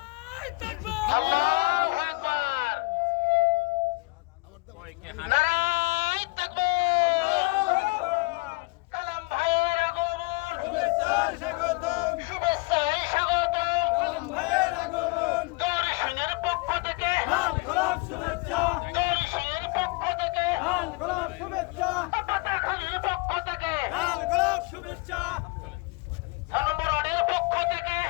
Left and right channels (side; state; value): right; quieter; 27.2 dB